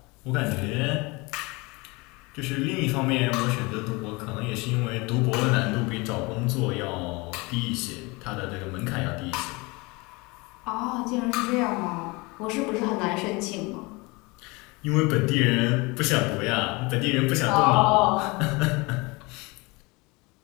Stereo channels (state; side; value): quieter; right; 25.7 dB